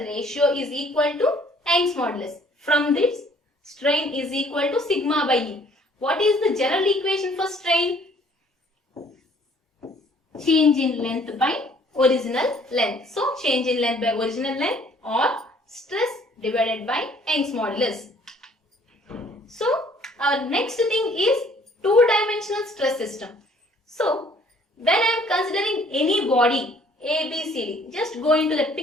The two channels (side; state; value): both; normal; correlation 0.59